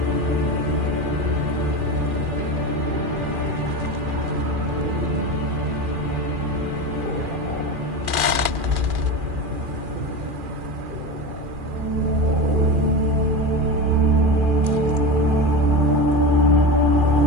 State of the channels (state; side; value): late; left; 2.4 ms